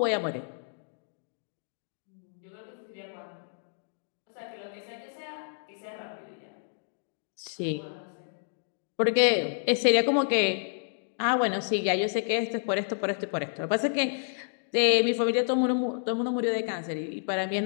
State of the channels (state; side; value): silent; right; digital silence